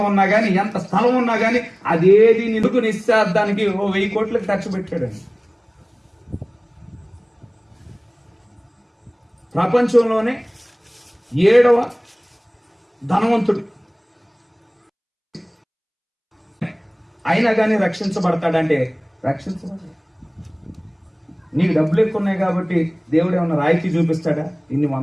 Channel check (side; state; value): both; identical; correlation 1.00